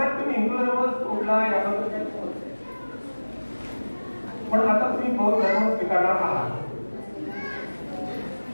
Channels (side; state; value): both; inverted; correlation -1.00